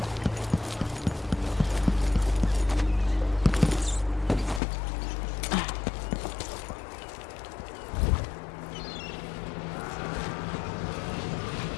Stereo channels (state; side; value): drops out; right; at 4.6 s